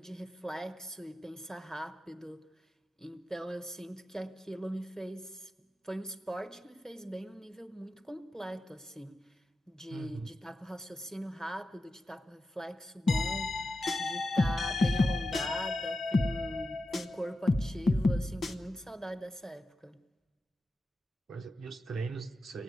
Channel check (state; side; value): normal; both; correlation 0.91